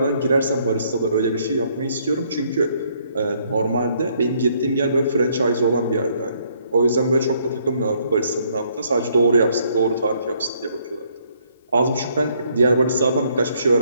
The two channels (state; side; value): inverted; both; correlation -0.68